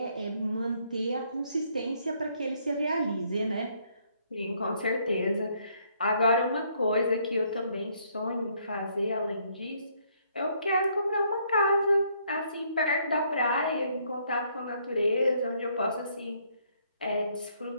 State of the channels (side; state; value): both; inverted; correlation -0.69